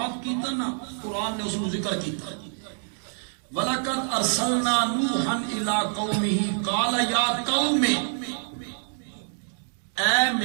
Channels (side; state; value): left; silent; digital silence